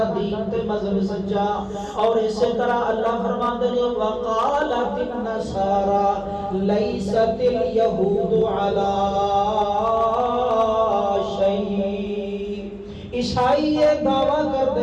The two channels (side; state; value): both; identical; correlation 1.00